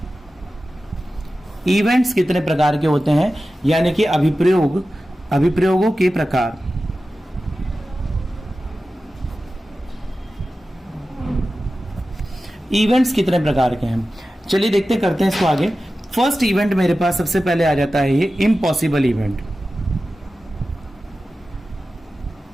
इवेंट्स कितने प्रकार के होते हैं, यानी कि अभिप्रयोगों के प्रकार। इवेंट्स कितने प्रकार के हैं, चलिए देखते करते हैं इसको आगे। फर्स्ट इवेंट मेरे पास सबसे पहले आ जाता है ये इम्पॉसिबल इवेंट।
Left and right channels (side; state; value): both; normal; correlation 0.94